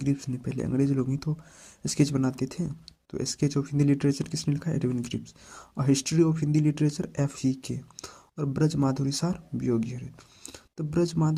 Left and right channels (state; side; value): identical; both; correlation 1.00